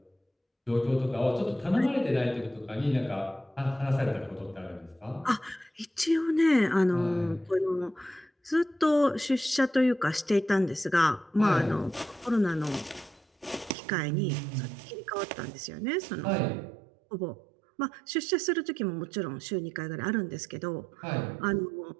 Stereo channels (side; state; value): left; drops out; at 13.8 s